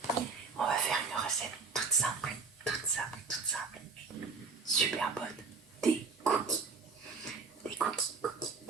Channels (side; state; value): left; quieter; 4.7 dB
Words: On va faire une recette toute simple, super bonne, des cookies. Des cookies.